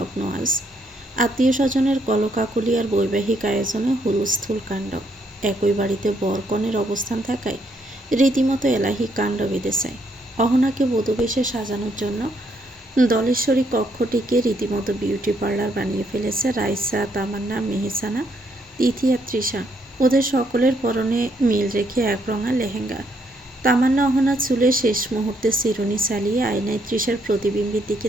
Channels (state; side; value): normal; both; correlation 0.73